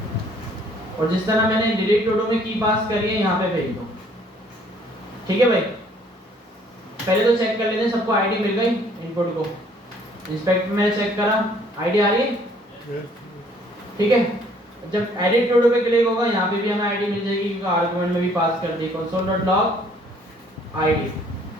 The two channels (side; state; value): both; normal; correlation 0.60